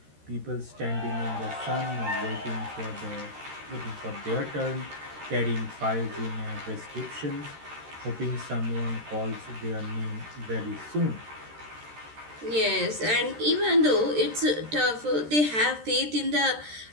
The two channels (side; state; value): left; late; 13 ms